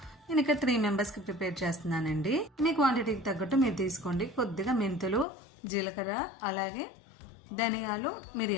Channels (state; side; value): drops out; right; at 5.2 s